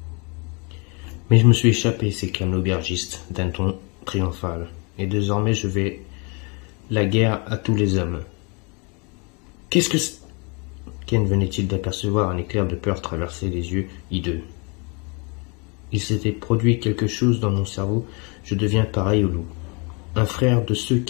Mais je me suis échappé, s'éclame l'aubergiste d'un ton triomphal, et désormais je vais la guerre à tous les hommes. Qu'est-ce que c'est? Ken venait-il d'apercevoir un éclair de peur traverser les yeux hideux. Il s'était produit quelque chose dans mon cerveau, je deviens pareil au loup. Un frère de ceux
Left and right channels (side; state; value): right; quieter; 32.4 dB